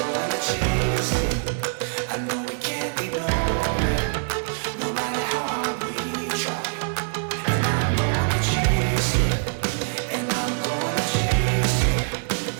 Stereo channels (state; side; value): silent; left; 61 dB below the other